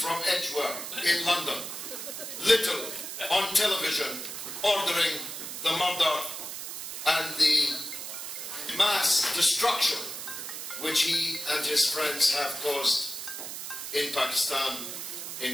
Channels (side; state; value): right; noise; hiss, 7 dB below the sound